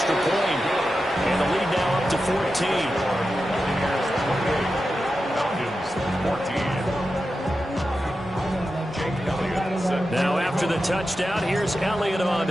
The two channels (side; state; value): both; normal; correlation 0.91